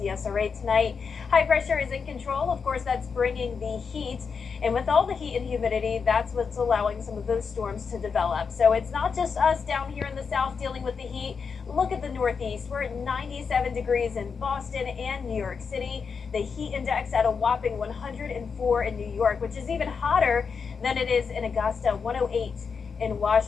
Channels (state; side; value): quieter; right; 5.7 dB